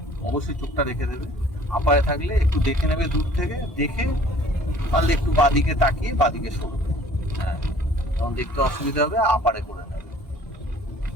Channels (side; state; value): both; normal; correlation 0.53